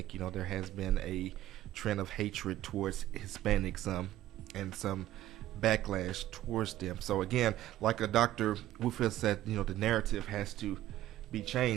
you know, there has been a trend of hatred towards Hispanics and some backlash towards them. So again, like Dr. Whitfield said, you know, the narrative has to be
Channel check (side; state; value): left; quieter; 14.1 dB